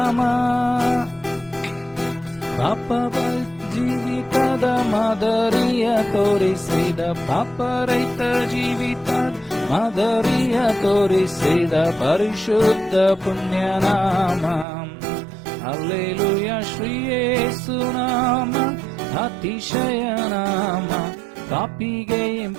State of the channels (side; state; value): left; drops out; at 14.7 s